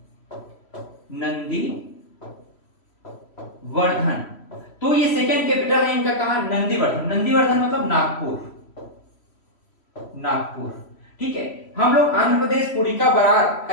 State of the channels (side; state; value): right; late; 3.1 ms